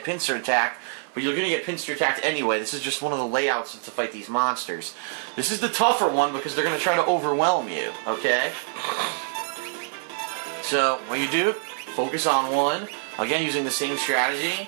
pincer attacked, but you're going to get pincer attacked anyway. This is just one of the layouts to fight these monsters. This is the tougher one because they're going to try to overwhelm you, okay? So what you do, focus on one. Again, using the same strategy.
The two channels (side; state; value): left; silent; 62 dB below the other